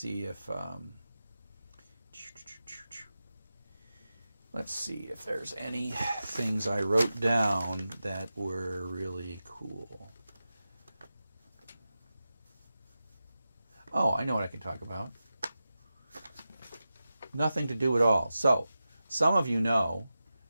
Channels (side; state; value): both; inverted; correlation -0.93